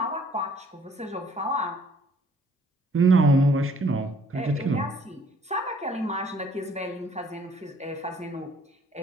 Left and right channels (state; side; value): normal; both; correlation 0.60